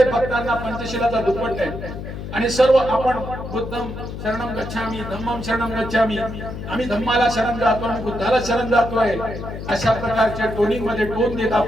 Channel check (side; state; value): left; noise; hum, 8 dB below the sound